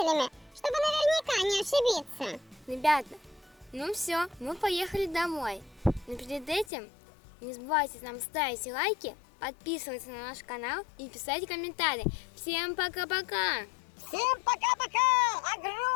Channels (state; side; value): drops out; right; at 6.7 s